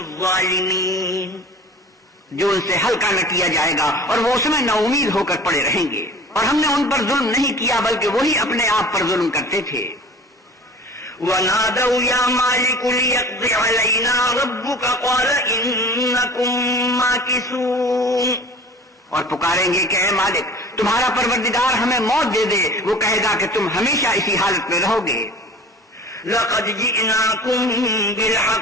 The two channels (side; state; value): both; normal; correlation 0.42